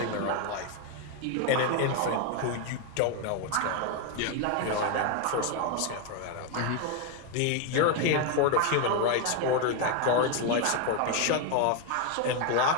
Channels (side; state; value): both; different; correlation 0.01